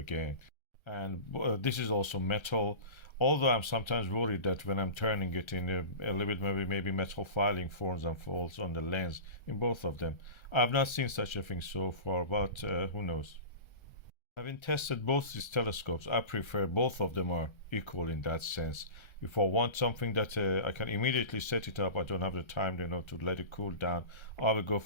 And this is also metal, although I'm sometimes worried that when I'm turning it in a little bit, maybe metal filing forms and falls on the lens in both of them. I've not seen such a thing so far, but who knows. Having tested both these telescopes, I prefer both of them are equal in that sense. If I want something that I can immediately set it up, I don't have the time, to let it cool down, I will go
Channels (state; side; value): late; right; 1.3 ms